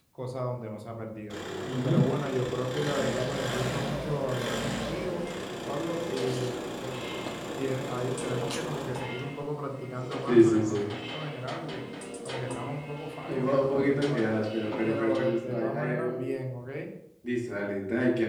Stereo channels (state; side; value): identical; both; correlation 1.00